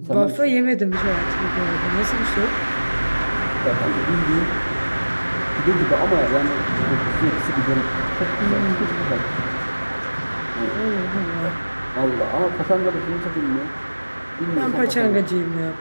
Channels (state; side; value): inverted; both; correlation -1.00